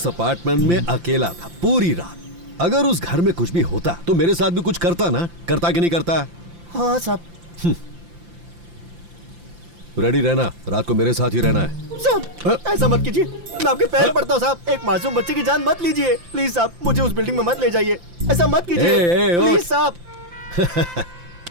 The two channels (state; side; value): late; left; 5.8 ms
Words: अपार्टमेंट में अकेला था पूरी रात। अगर उस घर में कुछ भी होता तो मेरे साथ भी कुछ करता ना, करता कि नहीं करता? हाँ साहब। रेडी रहना, रात को मेरे साथ ही रहना है। साहब ऐसा मत कीजिए, मैं आपके पैर पड़ता हूँ साहब, एक मासूम बच्चे की जान मत लीजिए प्लीज साहब, मुझे उस बिल्डिंग में मत ले जाइए, ऐसा मत कीजिए प्लीज साहब।